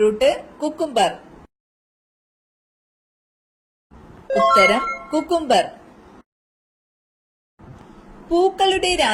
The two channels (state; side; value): identical; both; correlation 1.00